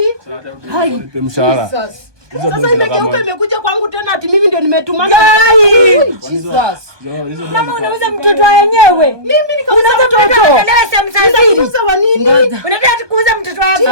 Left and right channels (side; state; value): left; late; 1.2 ms